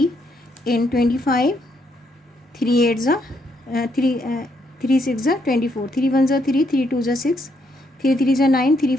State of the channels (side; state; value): both; normal; correlation 0.75